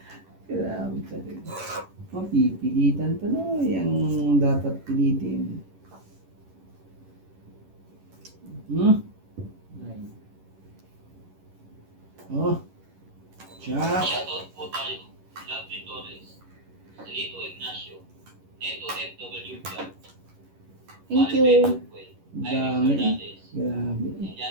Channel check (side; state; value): left; late; 11 ms